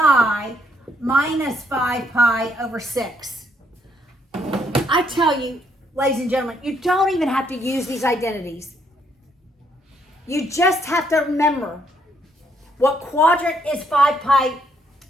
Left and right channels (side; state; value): both; normal; correlation 0.72